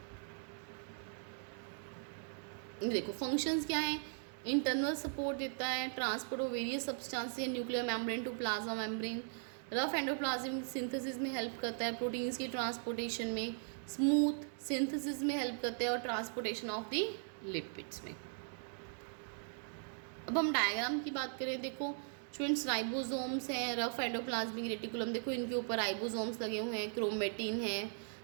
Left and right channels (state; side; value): silent; left; 52 dB below the other